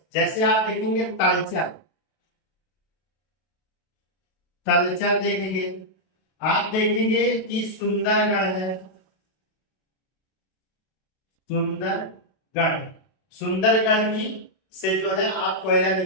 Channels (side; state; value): right; late; 32 ms